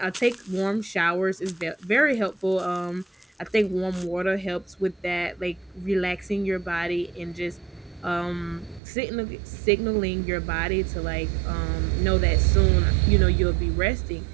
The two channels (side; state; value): left; drops out; at 8.8 s